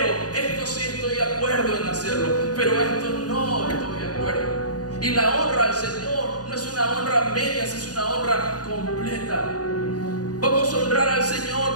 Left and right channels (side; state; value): right; late; 0.68 ms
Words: esto sí estoy de acuerdo en hacerlo, pero esto no estoy de acuerdo. Y la honra al Señor no es una honra a medias, es una honra completa. Vamos a honrar al Señor